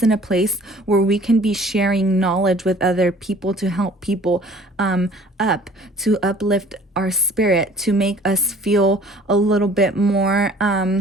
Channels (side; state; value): both; normal; correlation 0.52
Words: in a place where we can be sharing knowledge with other people to help people up, to uplift our spirit, to make us feel a little bit more